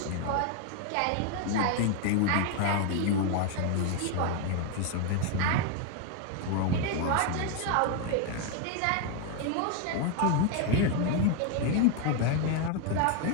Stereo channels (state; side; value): different; both; correlation 0.01